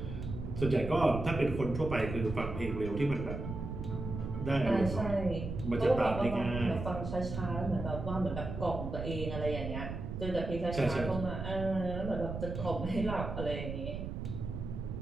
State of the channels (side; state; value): right; noise; rumble, 6 dB below the sound